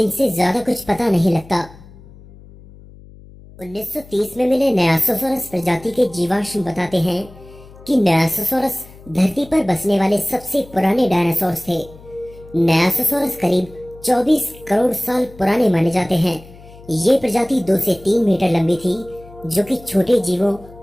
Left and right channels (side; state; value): left; noise; hum, 21 dB below the sound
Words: ज्यादा कुछ पता नहीं लगता। 1930 में मिले नयासोसॉरस प्रजाति के जीवाश्म बताते हैं कि नयासोसॉरस धरती पर बसने वाले सबसे पुराने डायनासोर्स थे। नयासोसॉरस करीब 24 करोड़ साल पुराने माने जाते हैं। ये प्रजाति 2 से 3 मीटर लंबी थी, जो कि छोटे जीवों